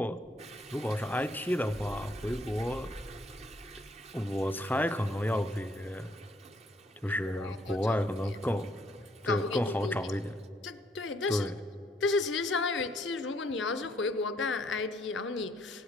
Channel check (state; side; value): normal; both; correlation 0.68